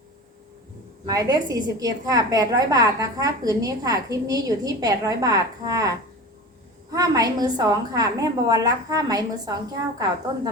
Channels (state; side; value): normal; both; correlation 0.32